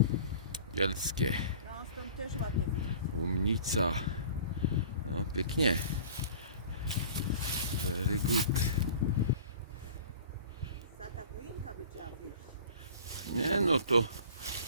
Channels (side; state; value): both; inverted; correlation -0.44